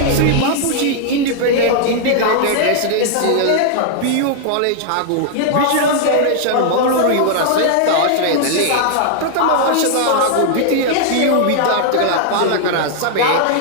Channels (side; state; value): both; different; correlation 0.00